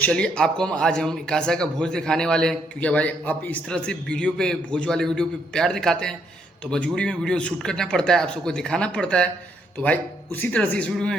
आपको हम कासा का भोज दिखाने वाले हैं, क्योंकि भाई आप इस तरह से वीडियो पे, भोज वाले वीडियो पे प्यार दिखाते हैं, तो मजबूरी में वीडियो शूट करना पड़ता है, आप सबको दिखाना पड़ता है। तो भाई उसी तरह से इस वीडियो में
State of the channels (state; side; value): normal; both; correlation 0.73